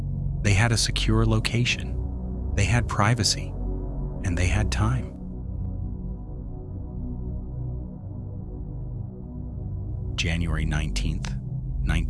They had a secure location, they had privacy, and they had time. January 19th,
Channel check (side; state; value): both; identical; correlation 1.00